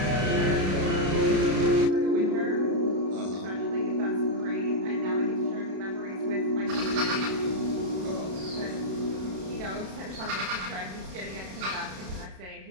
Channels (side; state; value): left; late; 32 ms